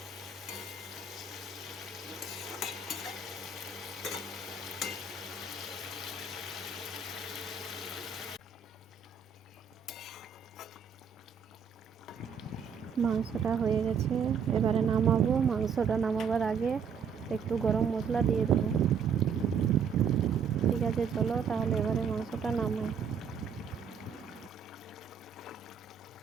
মাংসটা হয়ে গেছে, এবারে নামাবো। মাংসটা নামাবার আগে একটু গরম মশলা দিয়ে দেবো। ঠিক আছে, চলো তাহলে এবারে মাংসটা নামাই।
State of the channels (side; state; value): left; quieter; 6.4 dB